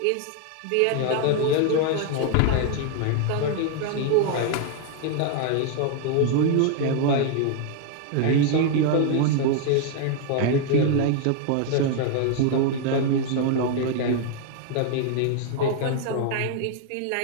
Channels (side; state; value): both; different; correlation 0.00